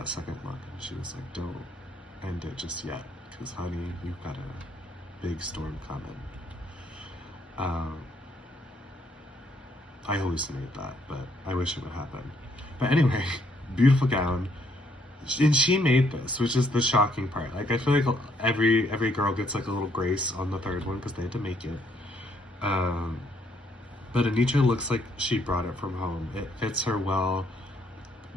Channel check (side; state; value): both; normal; correlation 0.69